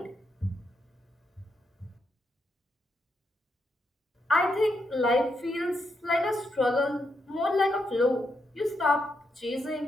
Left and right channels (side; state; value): both; normal; correlation 0.81